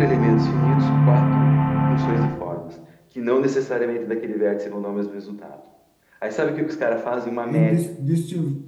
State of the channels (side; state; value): both; identical; correlation 1.00